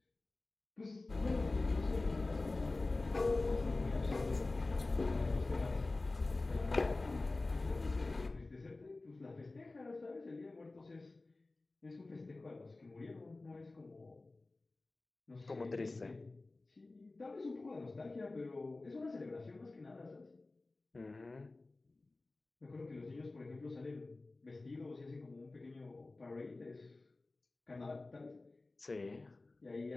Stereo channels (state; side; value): quieter; right; 3.2 dB